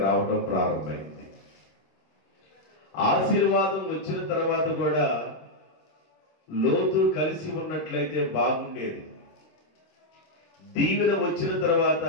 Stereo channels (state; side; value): late; right; 26 ms